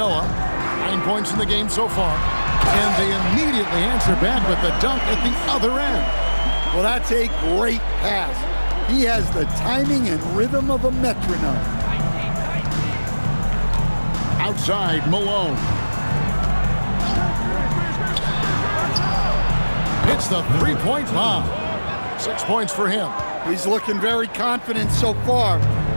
9 points in the game so far. And they immediately answer back with the dunk at the other end. Well, that's a great pass. He has the timing and rhythm of a metronome. Outside, Malone. Hits the three-point bomb. 6 points for him. He's looking very confident so far.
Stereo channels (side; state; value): both; inverted; correlation -1.00